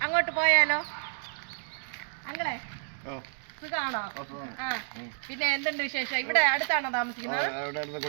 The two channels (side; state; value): left; silent; digital silence